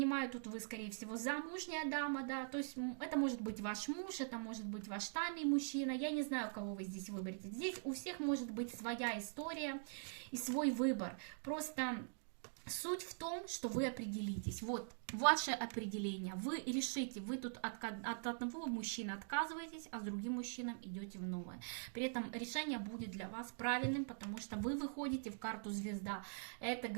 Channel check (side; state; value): left; silent; digital silence